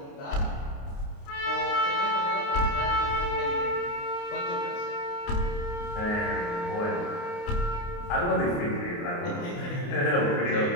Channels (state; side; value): late; right; 29 ms